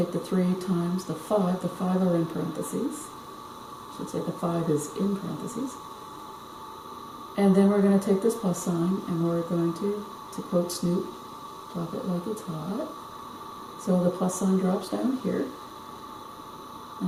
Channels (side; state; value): both; identical; correlation 1.00